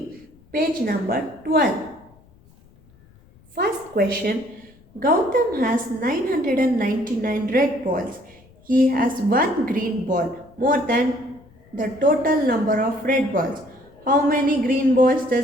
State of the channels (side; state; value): left; noise; rumble, 28 dB below the sound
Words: page number 12. First question, Gautam has 999 red balls. He has 1 green ball, more than the total number of red balls. How many green balls